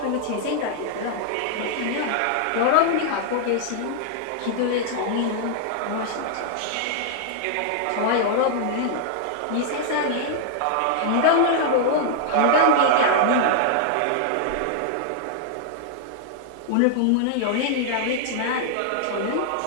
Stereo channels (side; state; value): both; different; correlation -0.01